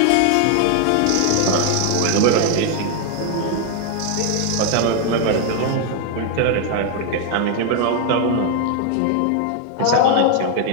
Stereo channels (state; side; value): different; both; correlation 0.00